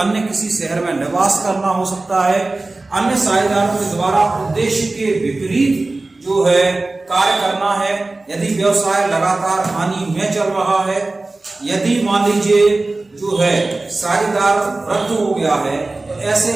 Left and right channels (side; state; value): left; quieter; 3.2 dB